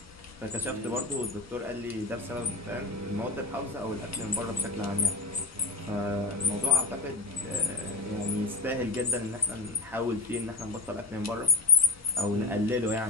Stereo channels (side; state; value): right; quieter; 3.3 dB